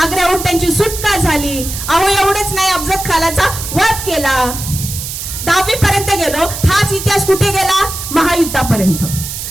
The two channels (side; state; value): right; noise; hiss, 7 dB below the sound